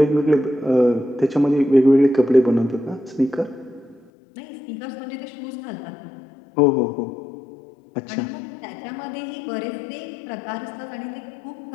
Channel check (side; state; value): right; drops out; at 4.1 s